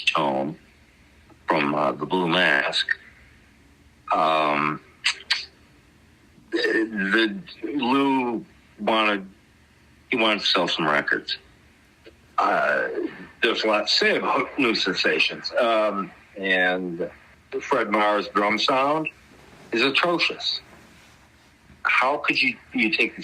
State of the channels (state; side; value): identical; both; correlation 1.00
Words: tone from the Blue Mask. Lou wanted to sell some records. There's a lot to say about New Sensations. And Fred Marr's drum sound is atrocious. How could you take